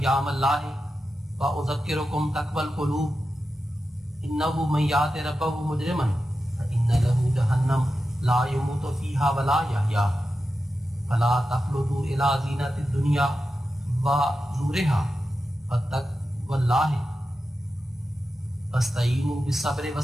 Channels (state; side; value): normal; both; correlation 0.91